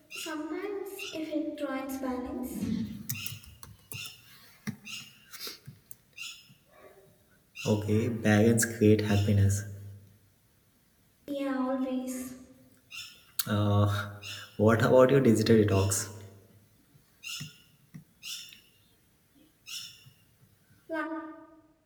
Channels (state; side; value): identical; both; correlation 1.00